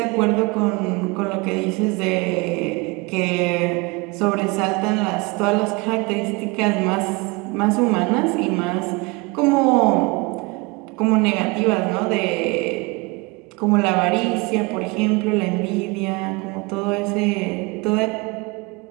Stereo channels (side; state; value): left; quieter; 26.4 dB